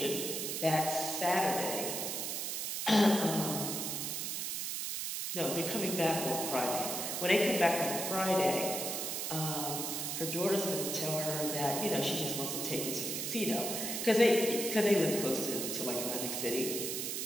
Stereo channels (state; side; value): noise; right; hiss, 2 dB below the sound